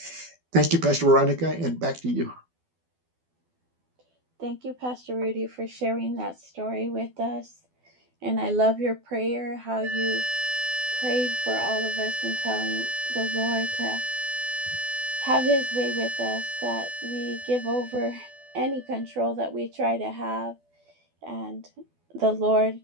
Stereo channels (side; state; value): left; late; 12 ms